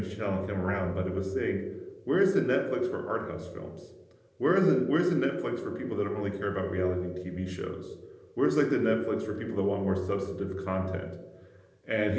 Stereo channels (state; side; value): identical; both; correlation 1.00